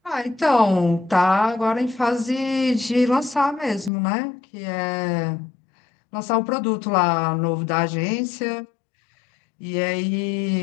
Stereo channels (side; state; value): right; drops out; at 3.9 s